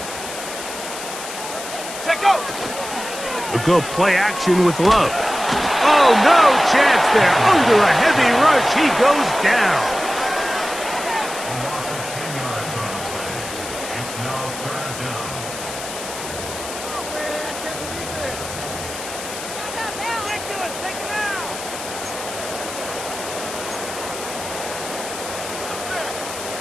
We'll go play action with Love. Oh, no chance there. Under a heavy rush, he goes down.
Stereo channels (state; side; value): noise; left; hiss, 9 dB below the sound